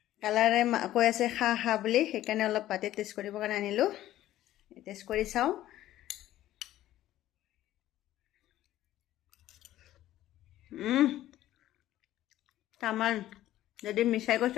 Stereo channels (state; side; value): quieter; right; 13.9 dB